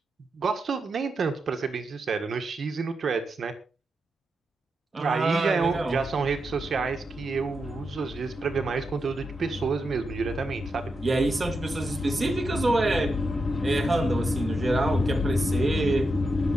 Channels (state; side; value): normal; both; correlation 0.86